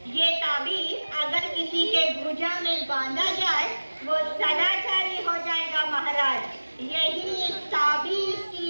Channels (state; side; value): inverted; both; correlation -1.00